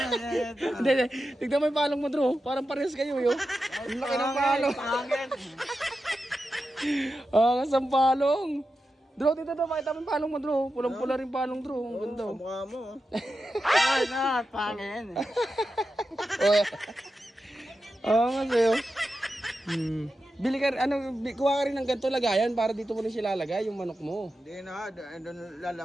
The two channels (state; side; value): normal; both; correlation 0.90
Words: Hindi. Tignan mo yung palong mo, Dro. Parang parehas kayo, yo. Ang laki ng palong. Pangin. Ang asang palong. Dro, dito, Dro. Pakita mo yung palong mo, Dro. Pulang-pula rin palong, Dro. Ang ganda, oh. Kamukha mo. Ay na, pangin. Oo nga sa'yo. Bili ka, kuha ka rin ng ganito lagayan para dito mo rin sila lalagay, yung manok mo. Hindi na, doon